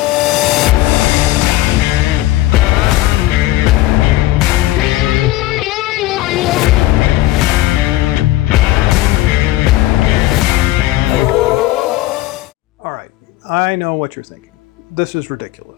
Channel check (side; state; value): right; quieter; 16.5 dB